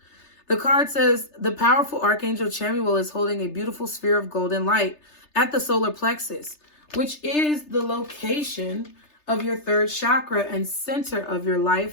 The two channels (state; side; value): late; right; 3.3 ms